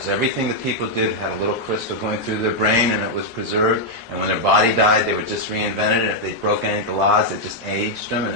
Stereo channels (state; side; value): normal; both; correlation -0.03